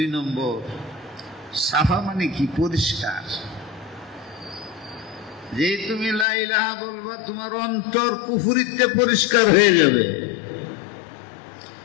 নম্বর, সাফা মানে কি? পরিষ্কার। যে তুমি লা ইলাহা বলবা, তোমার অন্তর কুফরিতে পরিষ্কার হয়ে যাবে।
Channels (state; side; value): drops out; right; at 6.2 s